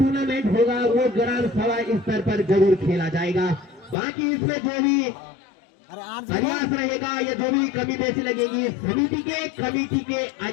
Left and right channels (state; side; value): drops out; right; at 4.0 s